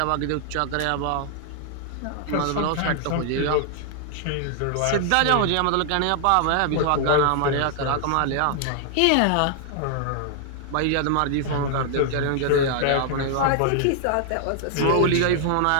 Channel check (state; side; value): different; both; correlation 0.00